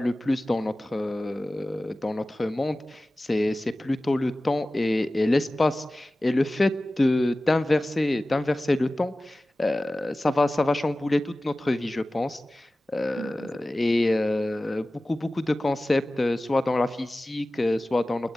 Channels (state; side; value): normal; both; correlation 0.97